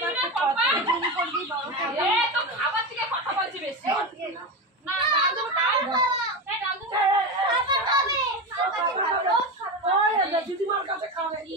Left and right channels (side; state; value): both; normal; correlation 0.19